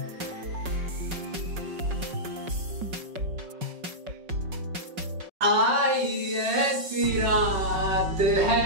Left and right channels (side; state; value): left; late; 5.4 ms